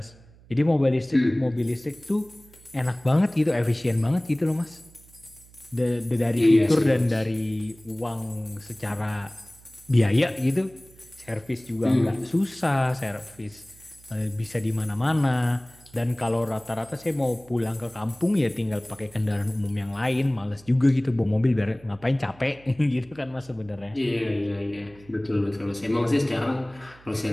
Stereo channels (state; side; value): noise; right; hum, 25 dB below the sound